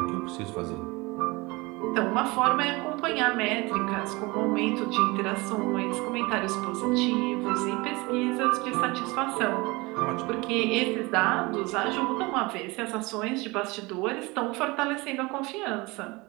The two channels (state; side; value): quieter; left; 24.0 dB